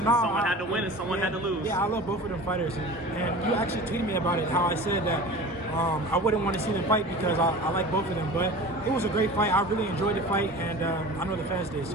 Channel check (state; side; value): normal; both; correlation 0.37